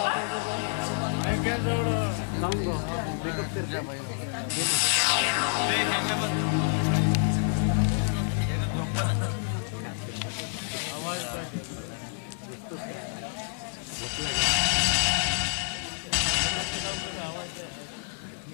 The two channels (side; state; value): right; silent; 59 dB below the other